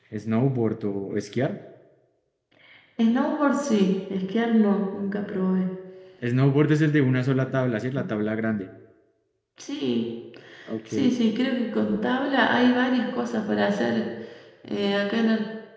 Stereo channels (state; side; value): identical; both; correlation 1.00